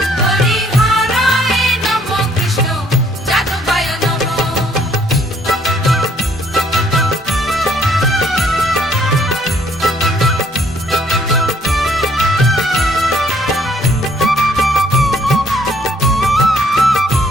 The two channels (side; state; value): both; normal; correlation 0.64